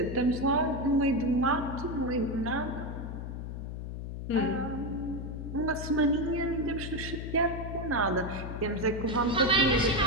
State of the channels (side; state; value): left; noise; hum, 7 dB below the sound